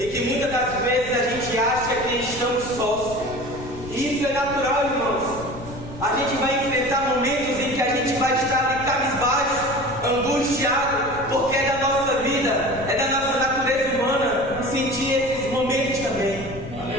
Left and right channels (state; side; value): noise; left; rumble, 14 dB below the sound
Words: que muitas das vezes a gente acha que estamos sós. E isso é natural, irmãos. A gente vai enfrentar momentos em que a gente vai estar ali cabisbaixo, angustiado, porque é da nossa vida, é da nossa natureza humana sentir esses momentos também.